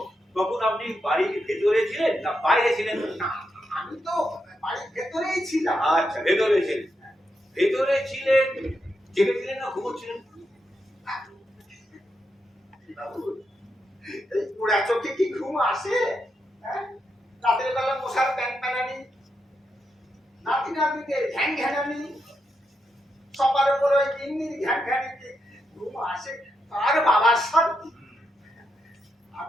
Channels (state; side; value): normal; both; correlation 0.83